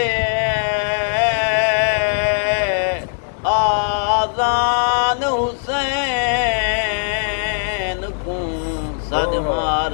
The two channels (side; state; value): right; silent; 66 dB below the other